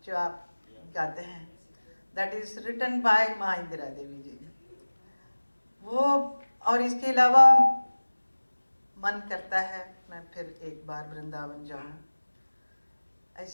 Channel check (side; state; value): both; inverted; correlation -1.00